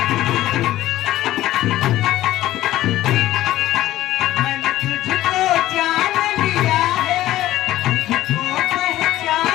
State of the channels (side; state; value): right; quieter; 14.7 dB